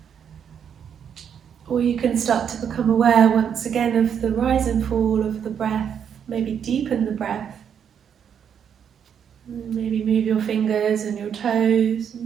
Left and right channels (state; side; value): quieter; left; 8.0 dB